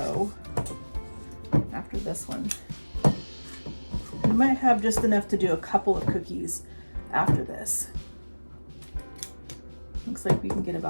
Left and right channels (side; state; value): both; inverted; correlation -1.00